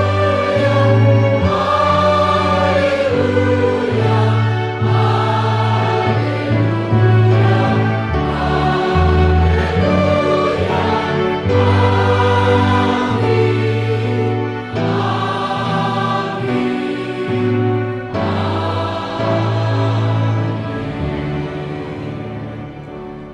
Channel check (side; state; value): both; identical; correlation 1.00